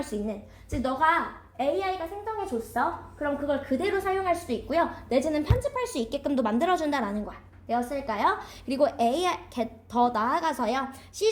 수 있는. 즉, 너가 AI가 생성해줬어. 그럼 그걸 그대로 사용할 수도 있고요. 내지는 편집할 수 있게끔도 만들어준다라는 거야. 되었을까요? 그리고 AI 더 나아가서요.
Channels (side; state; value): both; identical; correlation 1.00